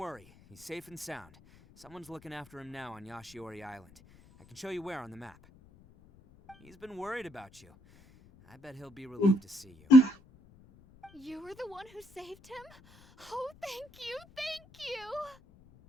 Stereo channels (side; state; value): left; noise; rumble, 25 dB below the sound